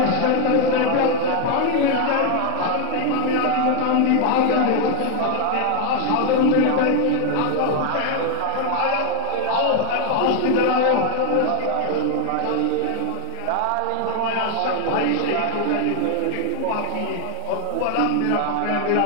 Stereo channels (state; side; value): different; both; correlation 0.00